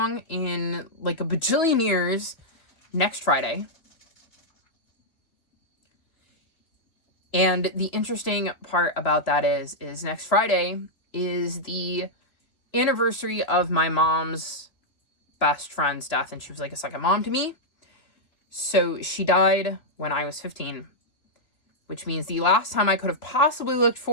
in like a bajillion years next Friday. And the interesting part about that is next Friday is the anniversary of my mom's best friend's death, and she was like a second mom to me. So she died when I was 15, which means the last time I could have possibly looked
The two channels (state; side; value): late; right; 2.8 ms